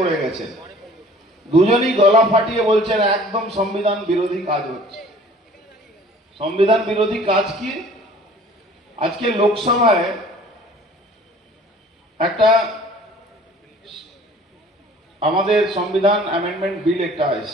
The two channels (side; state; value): both; normal; correlation 0.50